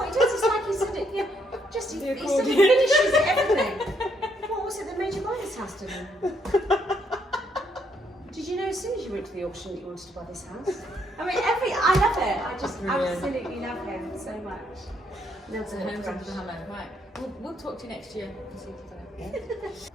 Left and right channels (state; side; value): normal; both; correlation 0.73